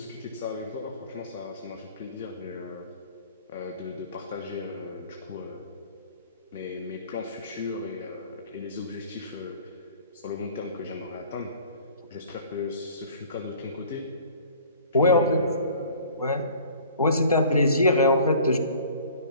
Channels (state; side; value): inverted; both; correlation -0.49